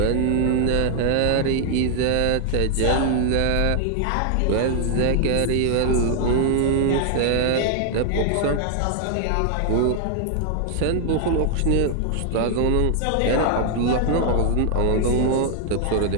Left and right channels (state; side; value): different; both; correlation 0.00